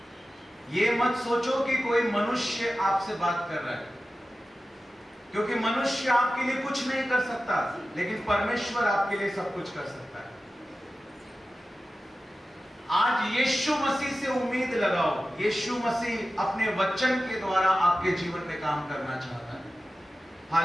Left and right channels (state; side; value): normal; both; correlation 0.94